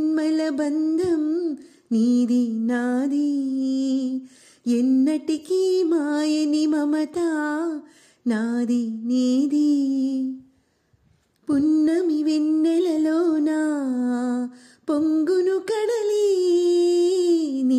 బంధం నీది నాది, ఎన్నటికీ మాయని మమత నాది నీది. పున్నమి వెన్నెలలోనా పొంగును కడలి,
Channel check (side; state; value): both; identical; correlation 1.00